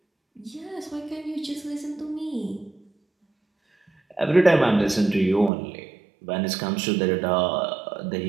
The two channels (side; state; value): left; drops out; at 5.5 s